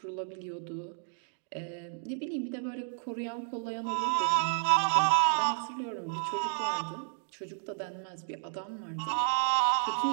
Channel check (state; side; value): silent; left; 57 dB below the other